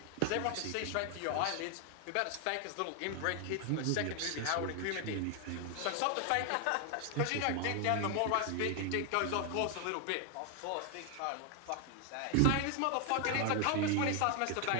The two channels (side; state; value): both; different; correlation 0.00